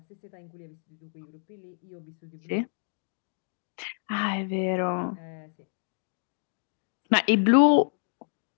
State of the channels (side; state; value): right; silent; digital silence